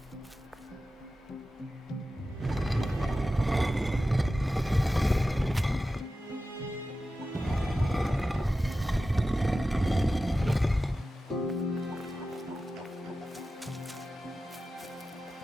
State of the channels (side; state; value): both; normal; correlation 0.93